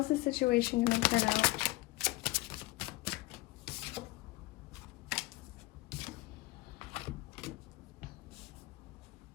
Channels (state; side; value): quieter; right; 20.3 dB